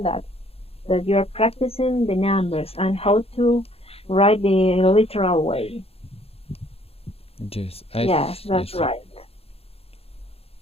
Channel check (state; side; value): late; right; 0.29 ms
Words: that you are practicing the numbers and how to write the literal way. Yes. Yes, that's Yes. right.